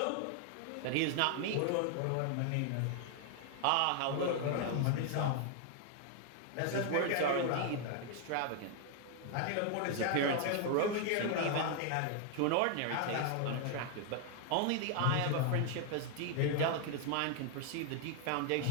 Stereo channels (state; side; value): different; both; correlation 0.00